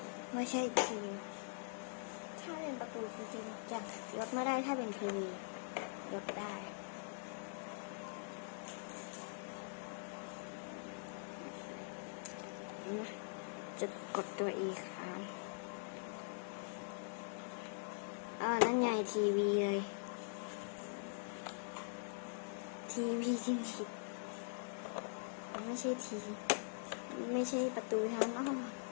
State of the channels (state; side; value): silent; right; digital silence